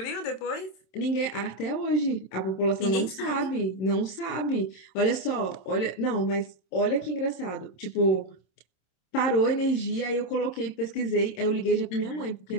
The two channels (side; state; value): right; late; 27 ms